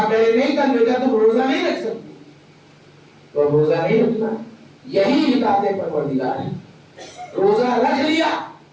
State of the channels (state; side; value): identical; both; correlation 1.00